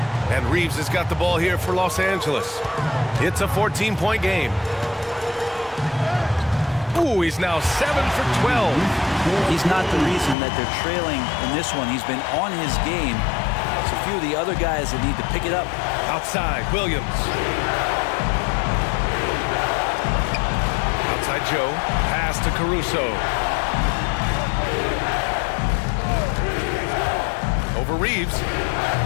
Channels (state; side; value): drops out; right; at 10.4 s